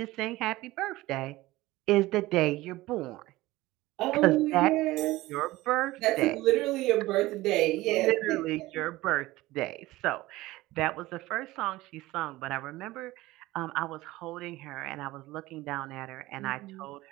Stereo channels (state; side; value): quieter; left; 18.4 dB